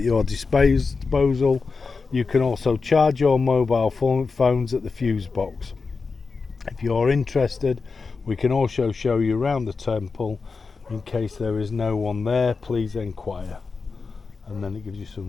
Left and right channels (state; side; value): quieter; right; 4.6 dB